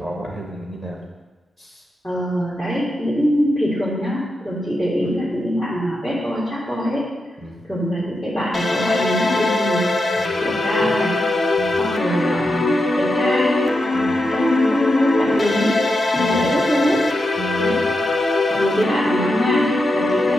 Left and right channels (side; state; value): both; normal; correlation 0.87